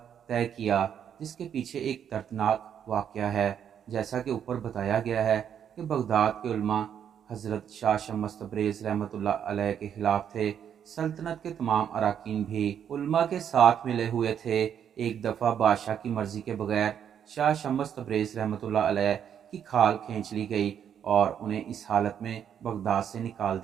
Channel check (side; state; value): left; quieter; 8.7 dB